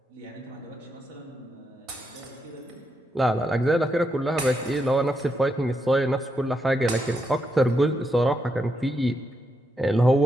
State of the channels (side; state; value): both; normal; correlation 0.82